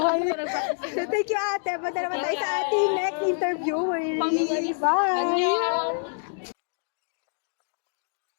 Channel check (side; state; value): right; silent; digital silence